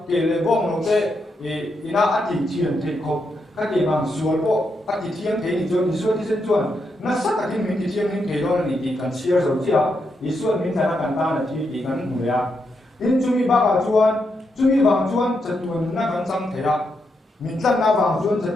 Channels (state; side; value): normal; both; correlation 0.82